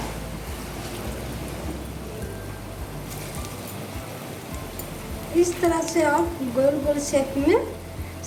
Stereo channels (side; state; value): both; identical; correlation 1.00